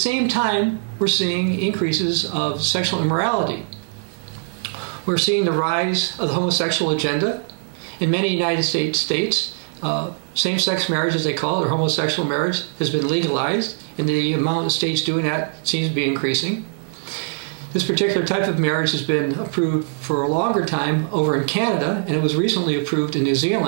time we're seeing increases of sexual immorality. We're seeing the rise of the homosexual agenda. In many United States states, same-sex marriage, as they call it, or homosexual marriage, has been legalized, and the amount of states doing that seems to be increasing. This particular type of marriage has been approved for a longer time over in Canada, and it was recently approved in New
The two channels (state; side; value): silent; left; digital silence